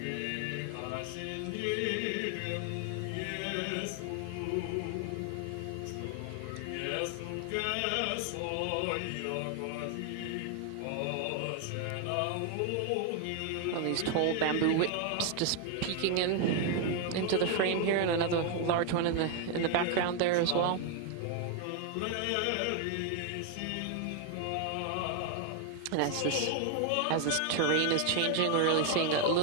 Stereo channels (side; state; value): both; different; correlation 0.00